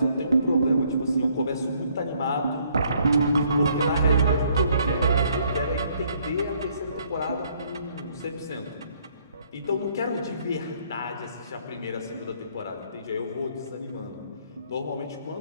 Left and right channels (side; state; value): both; inverted; correlation -0.66